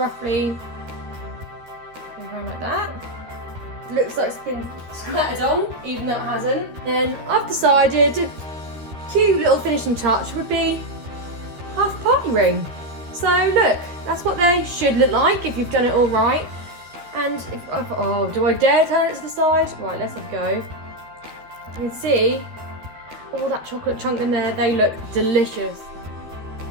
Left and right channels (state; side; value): late; left; 13 ms